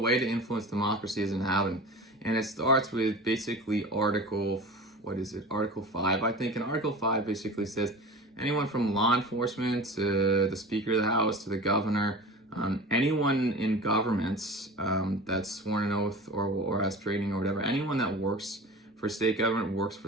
to influence democracy as an inhabitant, and it starts with basically Article 5, I think. And Article 5 basically says anyone from law enforcement to the Speaker of the House to the governor, anyone in governments that's sworn an oath or has training or whatever, anyone that works for state government works for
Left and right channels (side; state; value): both; normal; correlation 0.35